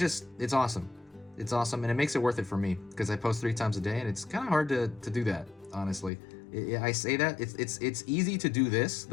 awesome. It's awesome, and it makes it worth it for me, because I post 3 times a day, and it's kind of hard to do that, honestly. I say that it's easy to do this.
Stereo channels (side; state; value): right; drops out; at 6.1 s